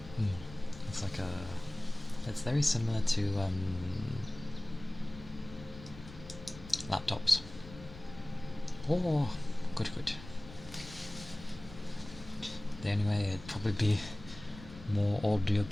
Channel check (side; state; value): left; noise; rumble, 16 dB below the sound